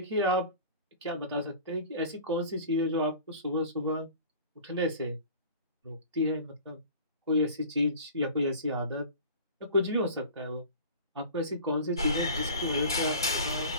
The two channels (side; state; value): both; inverted; correlation -0.41